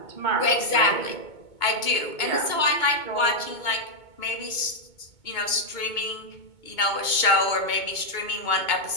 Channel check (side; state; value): right; late; 2.2 ms